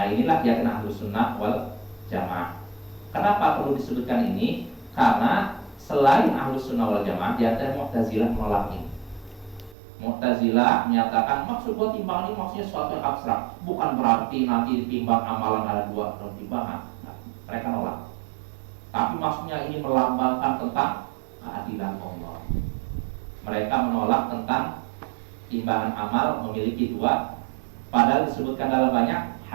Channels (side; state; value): left; drops out; at 9.8 s